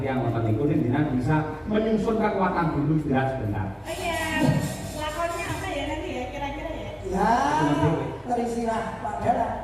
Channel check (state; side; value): identical; both; correlation 1.00